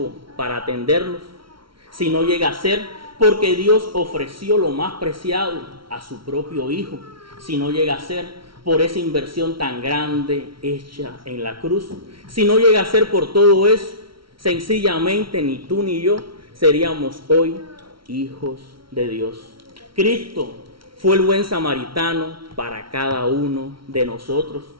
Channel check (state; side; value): late; left; 0.74 ms